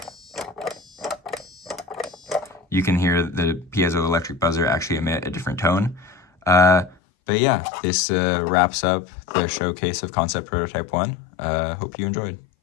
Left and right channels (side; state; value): right; drops out; at 7.0 s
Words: you can hear the piezoelectric buzzer actually emit a different tone. But yeah, this wraps up the showcase of Concept Prototype 1. Hope you enjoyed.